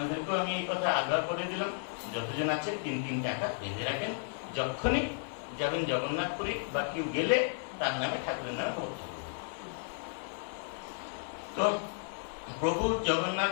আমি এই কথা আগ্রহ করে দিলাম, যতজন আছে 3 টাকা বেঁধে রাখেন। যখনই যাবেন জগন্নাথপুরী বা কেউ গেলে তার নামে ঠাকুরের নামে ভক্ত। তো প্রভু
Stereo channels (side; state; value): right; silent; 55 dB below the other